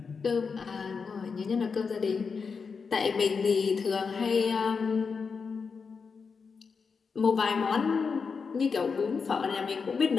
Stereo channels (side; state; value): right; quieter; 5.4 dB